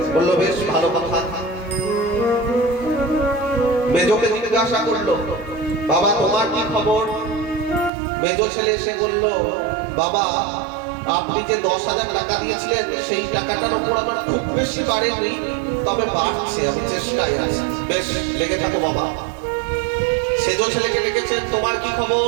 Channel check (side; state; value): left; drops out; at 7.9 s